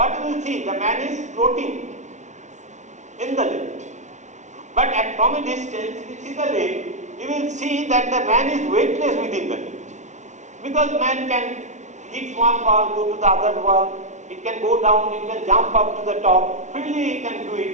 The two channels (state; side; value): late; left; 0.34 ms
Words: you will see? The man is floating in the lift. But from a distance, if you see the lift, you will see that the man is weightless within the lift. Because man can hit one wall, go to the other wall, it can go down, it can jump up to the top, freely he can do